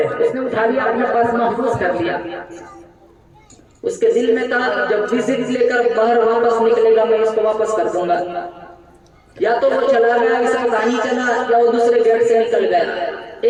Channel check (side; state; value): both; identical; correlation 1.00